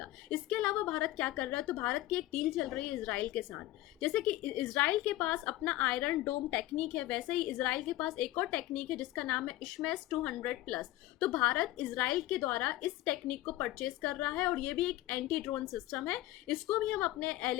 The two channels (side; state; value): right; quieter; 16.2 dB